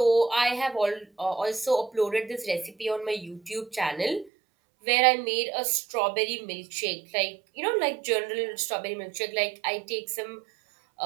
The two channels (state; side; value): drops out; left; at 4.3 s